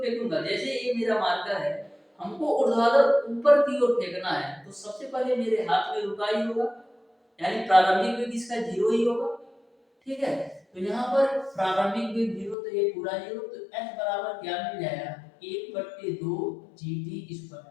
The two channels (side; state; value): right; drops out; at 12.6 s